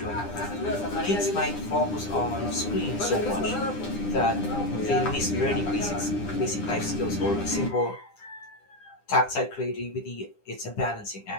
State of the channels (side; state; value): right; late; 9.9 ms